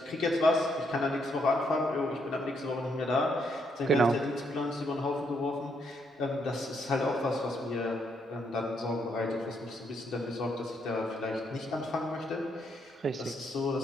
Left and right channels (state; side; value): normal; both; correlation 0.75